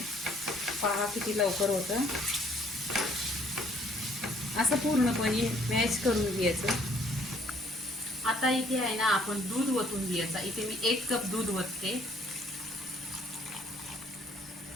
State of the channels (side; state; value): both; normal; correlation 0.62